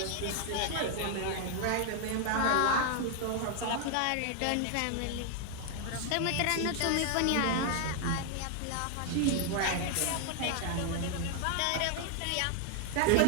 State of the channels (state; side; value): different; both; correlation 0.00